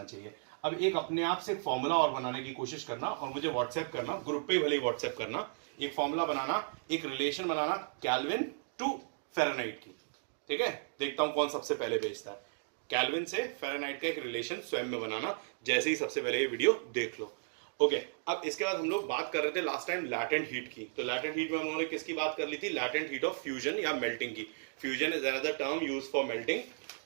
चाहिए। अब एक अपने आप से एक फॉर्मूला और बनाने की कोशिश करना और मुझे व्हाट्सएप करना, ग्रुप पे भले ही व्हाट्सएप करना, एक फॉर्मूला बनाना, एक रिलेशन बनाना केल्विन टू फ़ारेनहाइट की। ठीक है, देखता हूं कौन सबसे पहले भेजता है। केल्विन से फ़ारेनहाइट का एक रिलेशन स्वयं में बनाना, जैसे ही सबसे पहले ये वीडियो देख लो। ओके, अब इसके बाद हम लोग बात कर रहे थे लास्ट टाइम लैटेंट हीट की। तो लैटेंट हीट में हम लोगों ने किसकी बात कर ली थी? लैटेंट हीट ऑफ फ्यूजन या मेल्टिंग की। Fusion is another term use for melting.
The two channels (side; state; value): left; silent; digital silence